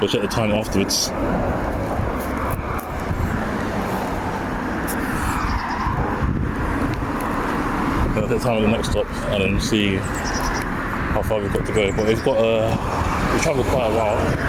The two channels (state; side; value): identical; both; correlation 1.00